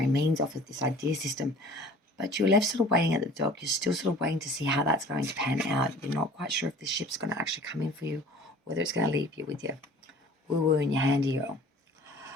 means off of this idea system. but you're left sort of waiting at the dock. You're still sort of waiting to see how that's going to pan out. You're not quite sure if the ship's going to actually come in for you, whether it's going to leave you with your woo-woo in your hand here.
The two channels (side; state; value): both; normal; correlation 0.46